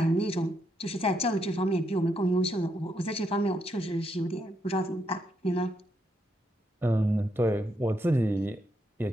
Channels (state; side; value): normal; both; correlation 0.79